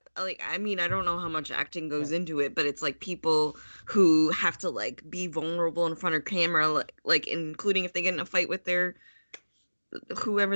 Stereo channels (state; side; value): inverted; both; correlation -1.00